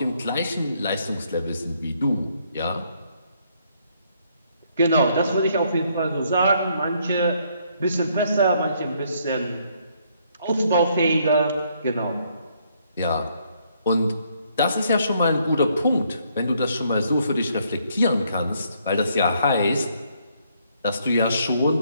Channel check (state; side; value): inverted; both; correlation -0.70